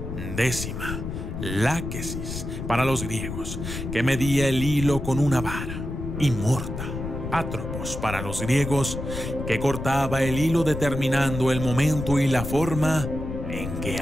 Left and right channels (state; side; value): noise; left; rumble, 6 dB below the sound